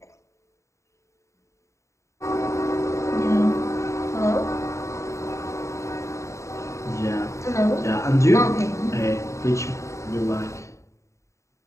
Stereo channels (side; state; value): right; late; 0.14 ms